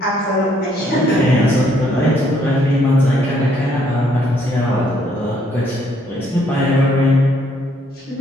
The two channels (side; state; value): both; normal; correlation 0.68